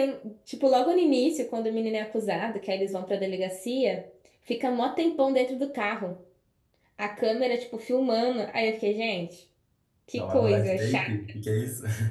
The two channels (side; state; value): both; identical; correlation 1.00